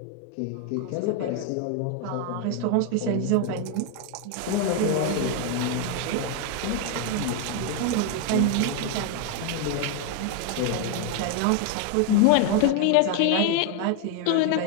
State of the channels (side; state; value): both; different; correlation 0.01